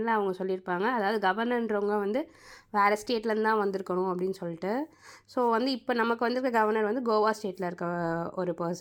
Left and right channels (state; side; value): identical; both; correlation 1.00